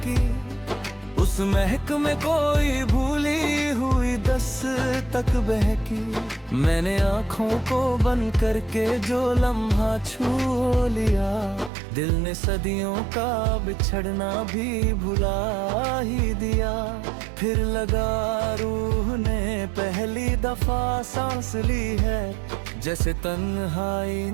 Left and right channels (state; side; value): drops out; left; at 11.7 s